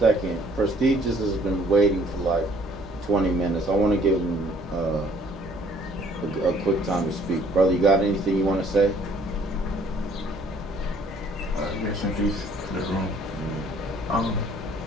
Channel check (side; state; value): both; normal; correlation 0.59